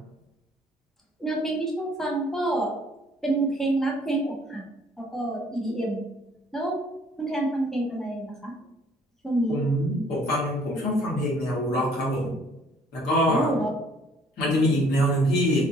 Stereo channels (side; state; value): both; normal; correlation 0.59